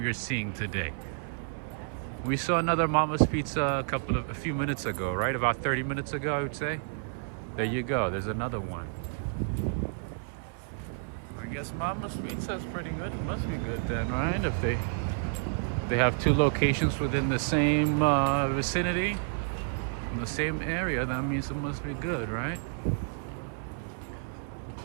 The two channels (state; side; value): silent; left; 58 dB below the other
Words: are seeing today. We saw another Mama's Pizza a few minutes ago, right? About 30 minutes ago, I would say. There you go. There's another one. I guess Mama's Pizza is pretty good. It must be good then, right? If they have two locations within the same vicinity, in the same area, that means it must be good, right?